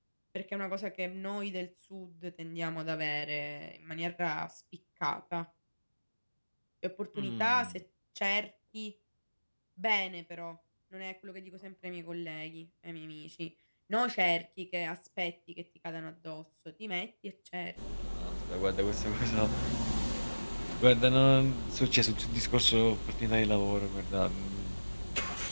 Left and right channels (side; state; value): both; inverted; correlation -1.00